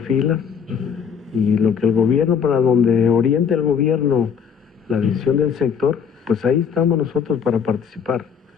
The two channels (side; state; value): right; quieter; 7.1 dB